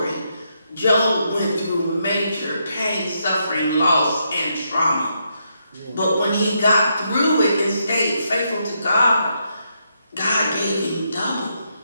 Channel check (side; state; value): both; inverted; correlation -0.79